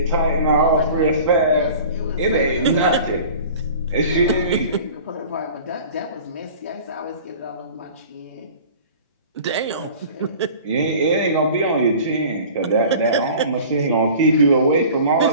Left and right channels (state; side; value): inverted; both; correlation -0.43